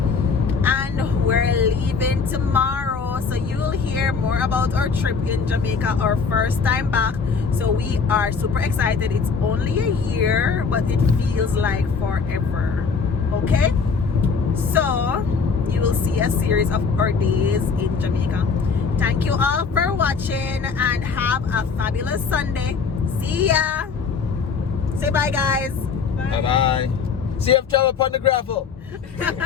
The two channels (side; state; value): right; quieter; 5.4 dB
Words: And we're leaving tomorrow. So you'll hear more about our trip in Jamaica, our first time back. So we are super excited. It's only a year, but it feels like forever. Okay? So you will see a series of our days in Jamaica. Thank you all for watching and have a fabulous Sunday. See ya. Say bye, guys. Bye bye. Safe travel upon the gravel.